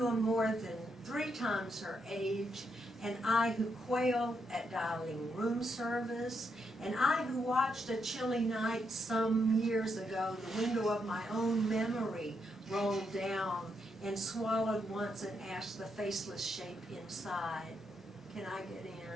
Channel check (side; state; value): both; normal; correlation 0.80